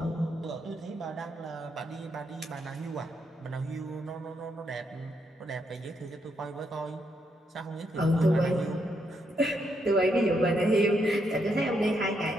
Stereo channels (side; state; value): both; normal; correlation 0.78